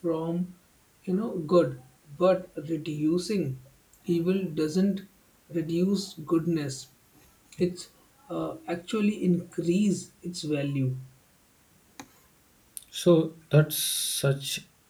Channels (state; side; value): identical; both; correlation 1.00